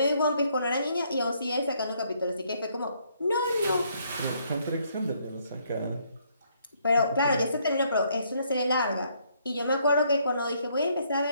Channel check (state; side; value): inverted; both; correlation -0.70